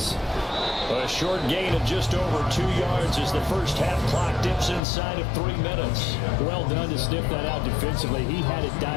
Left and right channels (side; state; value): right; drops out; at 4.8 s